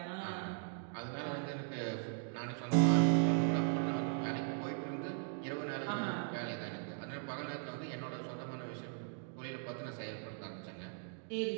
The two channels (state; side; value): silent; left; 52 dB below the other